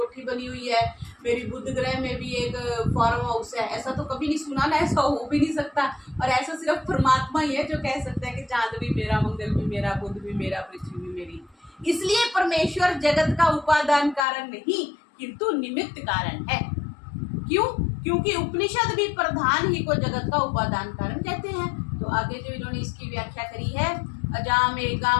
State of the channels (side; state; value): right; drops out; at 14.2 s